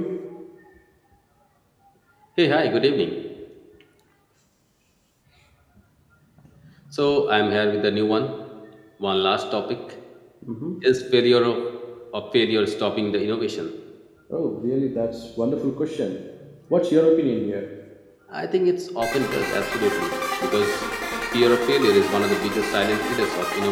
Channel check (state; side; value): identical; both; correlation 1.00